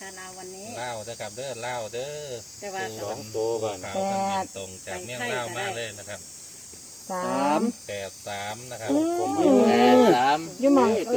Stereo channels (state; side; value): noise; left; hiss, 26 dB below the sound